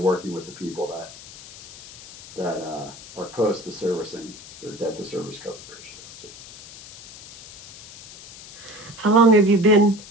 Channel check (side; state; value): left; noise; hiss, 17 dB below the sound